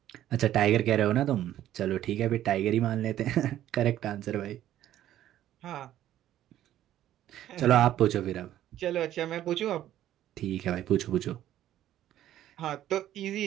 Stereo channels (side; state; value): left; quieter; 12.5 dB